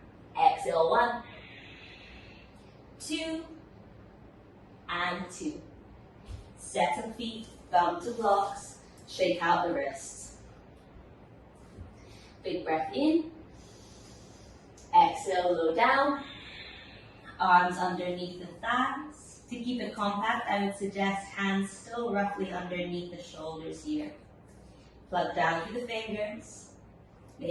exhale 1, 2, and 2. Second feet, thumb to blocks, shake out the wrists. Big breath in, exhale, low down, arms underneath the thighs. To keep it compact, I would suggest hands still roughly underneath the shoulders here. Plug down through the fingers.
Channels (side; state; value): both; identical; correlation 1.00